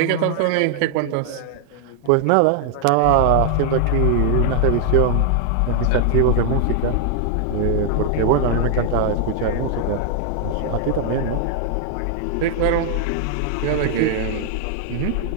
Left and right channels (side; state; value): both; different; correlation 0.00